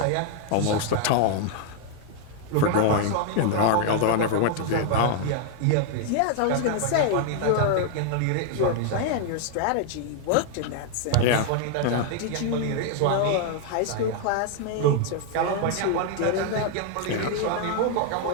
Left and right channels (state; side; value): different; both; correlation 0.00